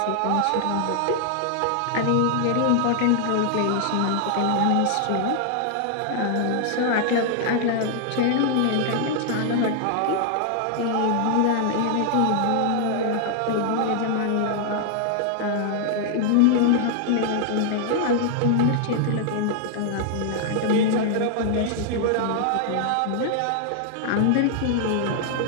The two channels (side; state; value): both; different; correlation -0.01